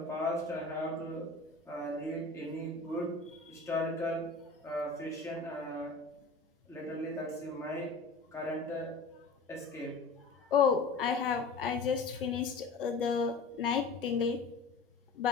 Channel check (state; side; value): quieter; right; 3.8 dB